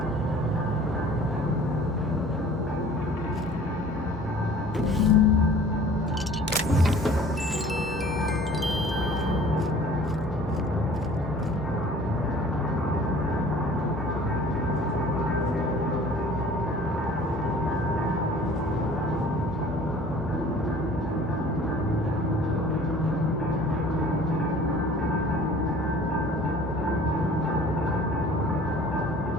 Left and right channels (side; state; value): both; normal; correlation 0.49